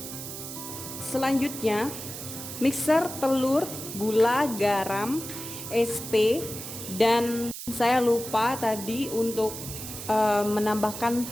Selanjutnya mixer telur, gula, garam, SP, dan saya lupa tadi untuk menambahkan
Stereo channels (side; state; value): right; noise; hiss, 9 dB below the sound